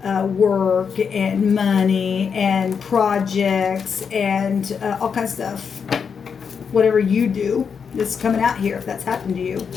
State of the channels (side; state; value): right; quieter; 6.4 dB